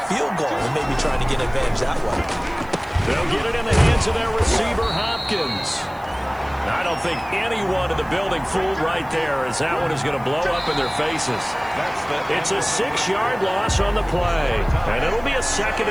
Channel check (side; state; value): right; noise; hiss, 27 dB below the sound